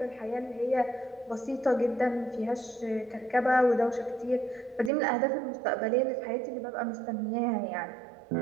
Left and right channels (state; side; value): drops out; left; at 4.9 s